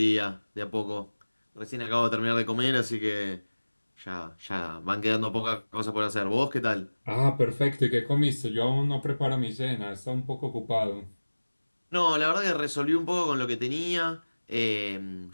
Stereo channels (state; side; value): inverted; both; correlation -1.00